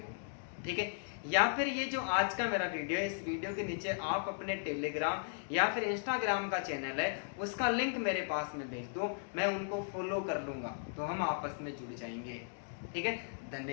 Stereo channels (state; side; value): silent; right; digital silence